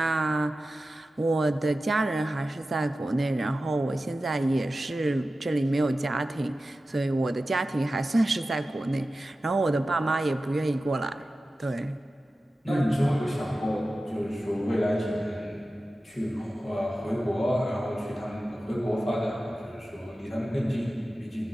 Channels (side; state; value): both; normal; correlation 0.94